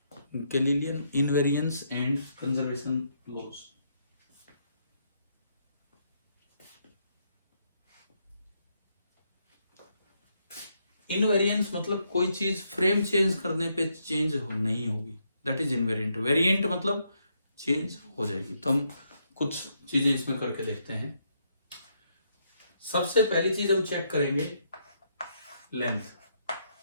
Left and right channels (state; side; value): inverted; both; correlation -0.77